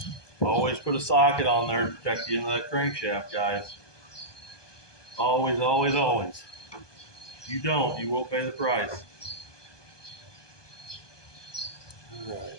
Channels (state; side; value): late; right; 1.2 ms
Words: Always put a socket on there to protect the end of that crankshaft, guys. Always, always, always. If you don't, you won't pay the price. All right.